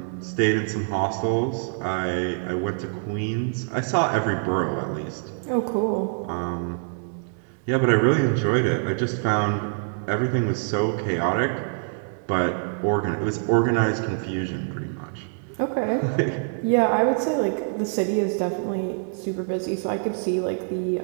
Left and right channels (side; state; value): left; silent; digital silence